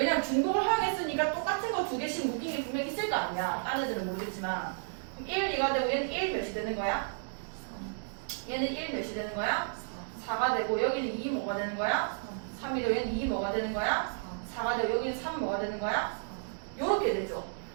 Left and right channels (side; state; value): left; silent; digital silence